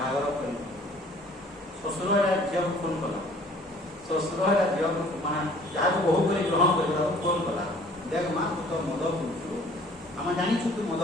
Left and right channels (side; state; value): both; normal; correlation 0.54